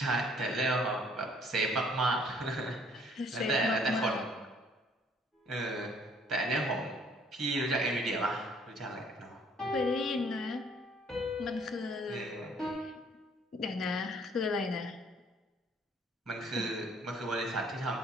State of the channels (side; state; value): both; normal; correlation 0.60